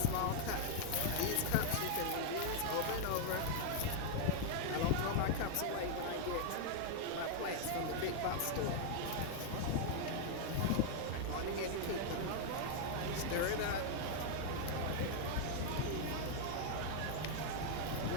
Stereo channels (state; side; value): different; both; correlation -0.01